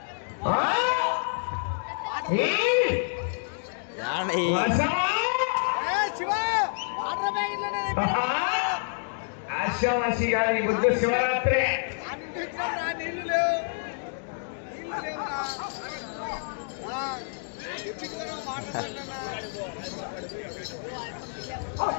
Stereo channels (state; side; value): silent; right; digital silence